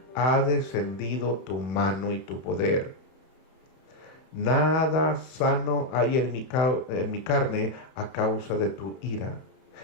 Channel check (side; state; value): right; late; 31 ms